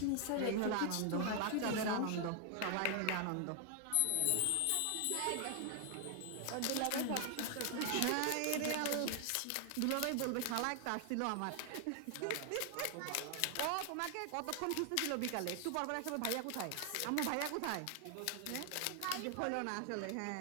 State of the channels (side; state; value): both; different; correlation 0.00